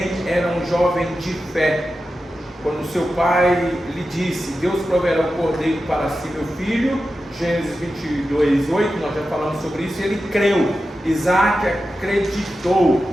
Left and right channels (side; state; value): both; normal; correlation 0.91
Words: era um jovem de fé. Quando seu pai lhe disse: Deus proverá o cordeiro para si, meu filho, Gênesis 22:8, nós já falamos sobre isso, ele creu. Isaac acreditou